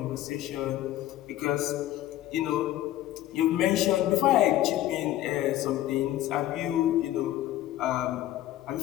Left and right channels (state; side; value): quieter; right; 14.0 dB